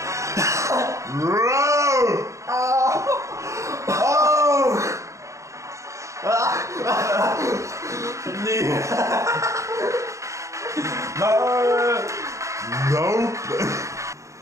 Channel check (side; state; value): left; late; 0.15 ms